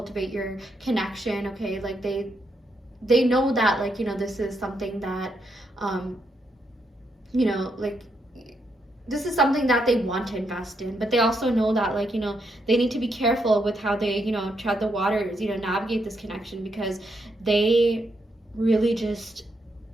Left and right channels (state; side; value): normal; both; correlation 0.79